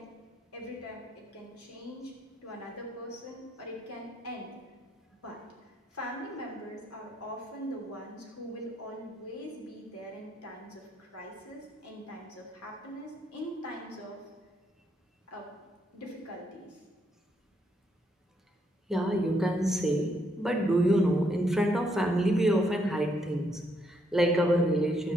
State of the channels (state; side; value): normal; both; correlation 0.74